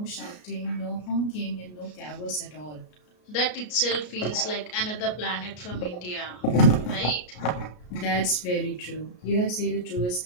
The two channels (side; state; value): right; late; 33 ms